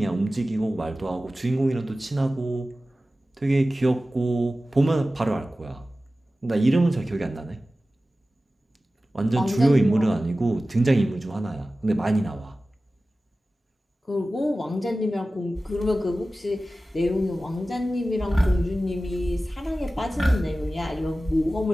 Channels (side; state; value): both; normal; correlation 0.96